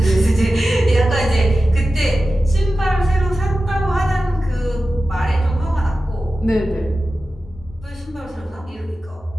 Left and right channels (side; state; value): both; normal; correlation 0.94